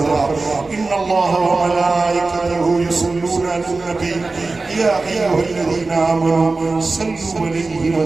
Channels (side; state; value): left; quieter; 3.6 dB